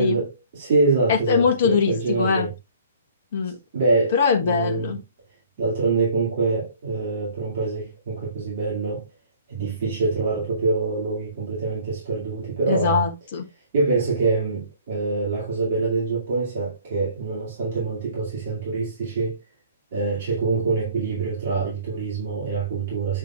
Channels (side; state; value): both; inverted; correlation -0.53